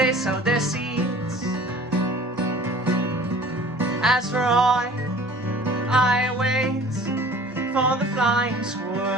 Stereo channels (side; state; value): both; normal; correlation 0.47